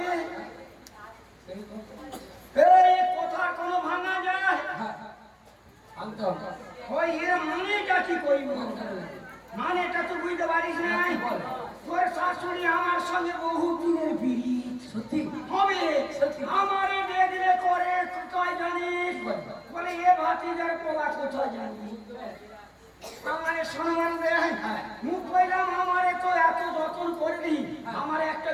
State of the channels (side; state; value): both; identical; correlation 1.00